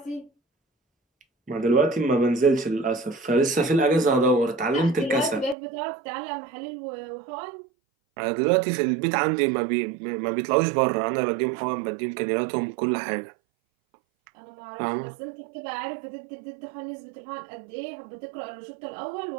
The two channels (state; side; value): drops out; left; at 5.6 s